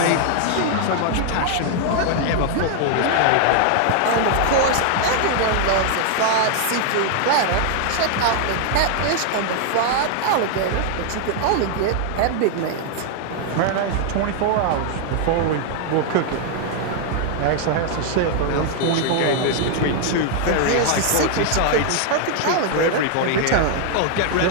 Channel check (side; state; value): both; different; correlation 0.00